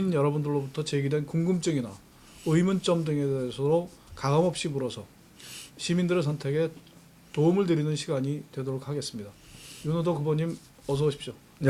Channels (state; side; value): identical; both; correlation 1.00